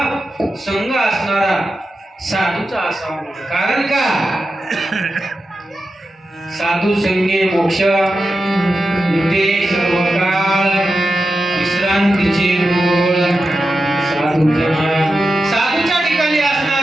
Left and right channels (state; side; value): normal; both; correlation 0.91